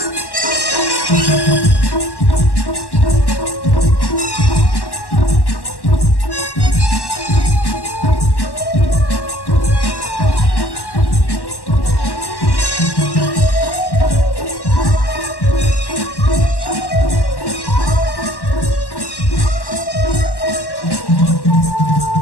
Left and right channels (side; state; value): right; late; 1.1 ms